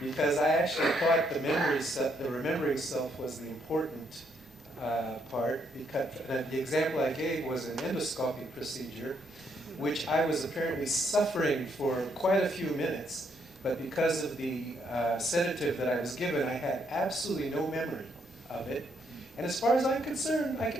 because I actually thought the remembering self was the important part, because the example I gave was an endoscopic procedure, which I was apparently suffering for quite a few minutes, but because of the sedative that I was given, I had absolutely no memory of it. And as far as I'm concerned, I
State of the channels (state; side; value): normal; both; correlation 0.73